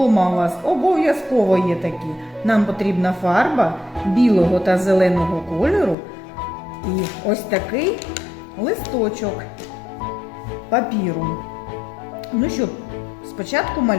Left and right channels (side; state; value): right; drops out; at 6.0 s